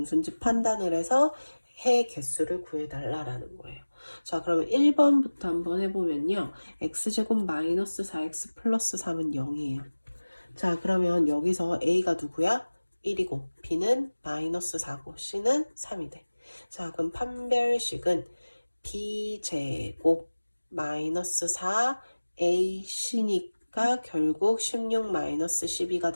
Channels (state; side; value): inverted; both; correlation -1.00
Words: 판단을 해서 해 개수를 구해달라라는 거예요. 자, 그러면 1번부터 한번 해보면요. x제곱 마이너스 4x 플러스 3은 0이에요. 자, 그러면 여기서 A가 누구야? 1이고 B는 마이너스 4고 C는 3이 돼. 자, 그럼 판별식은 B제곱 마이너스 4AC니까 결국 16 마이너스 12가